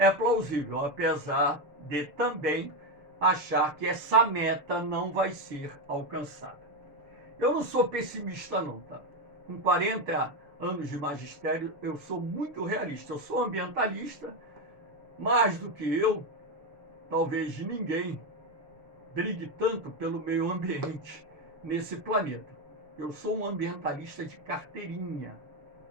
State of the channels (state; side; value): late; left; 6.7 ms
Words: plausível, apesar de também achar que essa meta não vai ser alcançada. Eu não sou pessimista não, tá? Com 40 anos de magistério, eu sou muito realista. Eu sou ambientalista, mais do que eu, talvez ninguém brigue tanto pelo meio ambiente nesse planeta. Eu sou um ambientalista de carteirinha